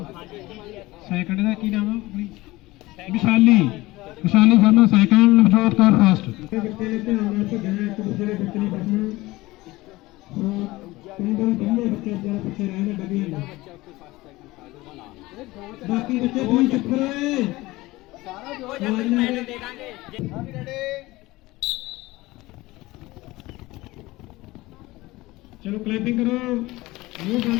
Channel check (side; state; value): right; quieter; 19.7 dB